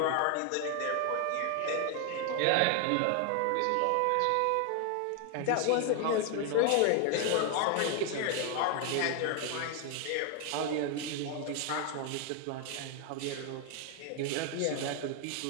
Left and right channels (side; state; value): both; different; correlation 0.01